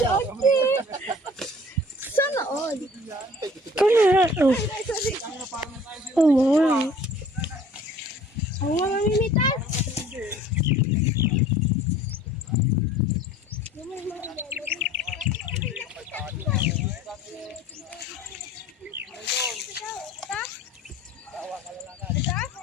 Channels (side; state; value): both; normal; correlation 0.50